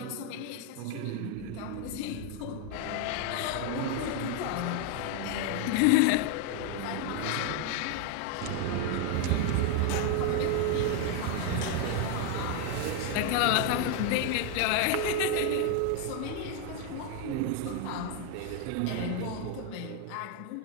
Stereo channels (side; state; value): both; different; correlation 0.01